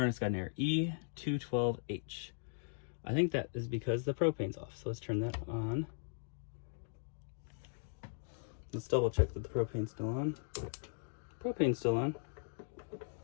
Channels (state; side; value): silent; right; digital silence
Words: got an error, E212H. I think that is because the propane's off, so let's turn that on. Let's double check that the propane's still on. Propane's still on.